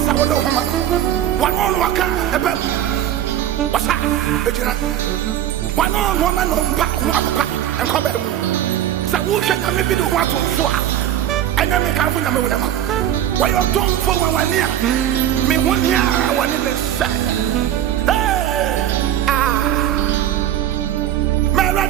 of one on Waka, a bed. What's that? One on woman on Papa and come back. So, who should I maybe do what to swap? And then make out with them. Why you don't for 1 year? Me 1 year, I want to say. Hey,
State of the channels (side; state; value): left; quieter; 11.4 dB